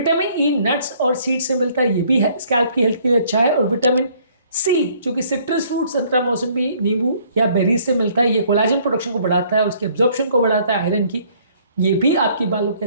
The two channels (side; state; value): both; inverted; correlation -0.61